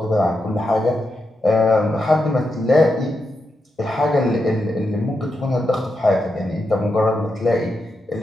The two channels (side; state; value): both; normal; correlation 0.86